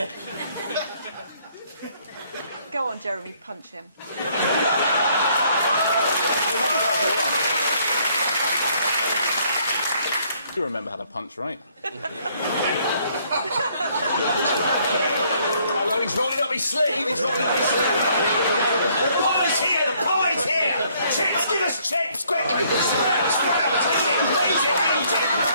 Go on, Jeremy, punch him. You remember how to punch, right? Hello, he's rolling up his sleeve. He's rolling up his sleeve. The pie's here. The pie's here. Chips, give us chips, quick. Sprout, sprout. Eat it, eat it, eat it.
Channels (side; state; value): both; inverted; correlation -0.65